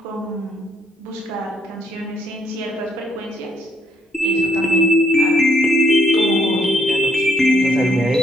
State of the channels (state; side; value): normal; both; correlation 0.70